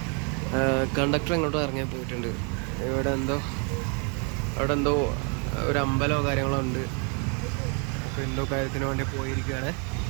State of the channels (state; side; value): quieter; left; 36.8 dB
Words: കണ്ടക്ടർ ഇങ്ങോട്ടും ഇറങ്ങി പോയിട്ടുണ്ട്. ഇവിടെ എന്തോ ഒരു അമ്പലമോ കാര്യങ്ങളോ ഉണ്ട്. അപ്പോൾ എന്തോ കാര്യത്തിന് വേണ്ടി പോയിരിക്കുകയാണ്.